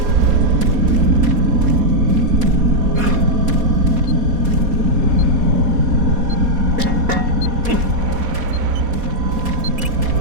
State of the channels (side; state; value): left; late; 4.2 ms